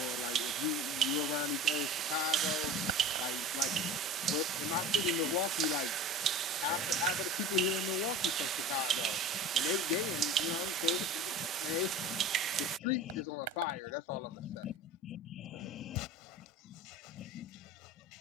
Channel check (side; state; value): both; normal; correlation 0.33